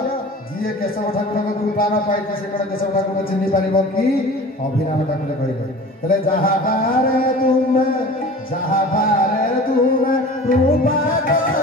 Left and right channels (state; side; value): normal; both; correlation 0.40